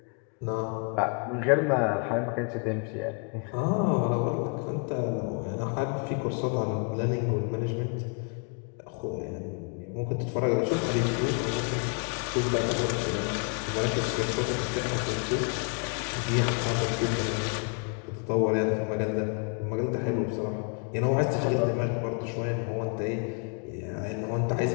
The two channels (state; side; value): quieter; right; 39.7 dB